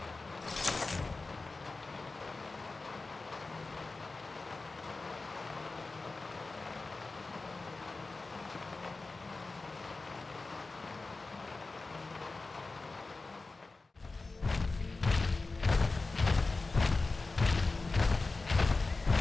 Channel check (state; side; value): quieter; right; 3.6 dB